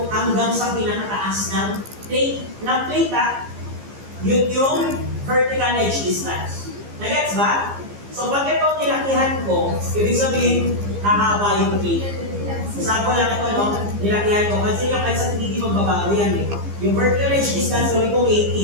hanggang sa pinakataas ng plate, yun yung vertical edge distance. Nagets ba? So pag ito nilakihan ko, ibig sabihin, hahaba yung plate. Example lang ito, no? Nilakihan ko. Kasi yung kahit sa hindi magbabago yan eh. Yung vertical edge distance, gawin ko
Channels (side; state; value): left; late; 15 ms